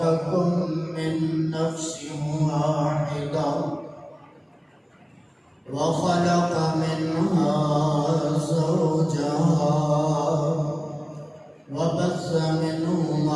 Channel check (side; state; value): both; identical; correlation 1.00